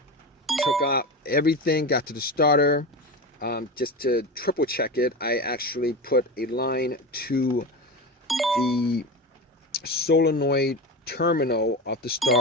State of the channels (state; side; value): normal; both; correlation 0.23